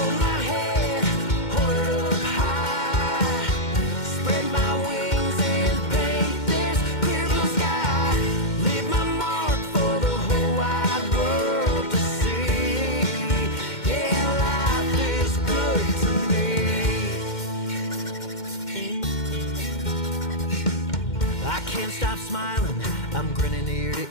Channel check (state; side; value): late; right; 2.1 ms